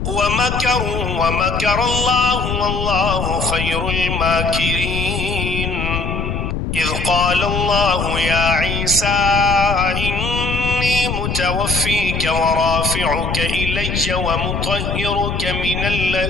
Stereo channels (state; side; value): noise; left; rumble, 3 dB below the sound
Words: ومكروا ومكر الله والله خير الماكرين إذ قال الله يا عيسى إني متوفيك ورافعك إلي ومطهرك من